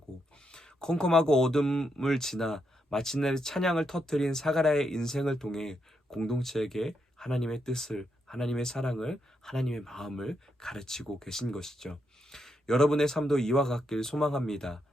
컴컴하고 어둠을 지나 마침내 찬양을 터뜨린 사가랴의 인생을 통해 공동체에게 하나님의 뜻을, 하나님의 사랑을, 하나님의 마음을 가르치고 계신 것이죠. 여러분의 삶도 이와 같길 소망합니다.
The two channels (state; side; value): normal; both; correlation 0.81